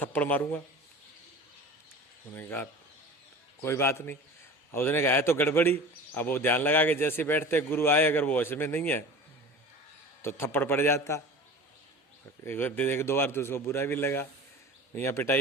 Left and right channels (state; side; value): normal; both; correlation 0.37